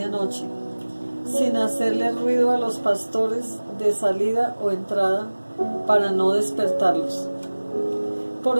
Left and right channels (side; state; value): both; inverted; correlation -1.00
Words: sin hacerle ruido a los pastores de salida o entrada para no despertarlos. Por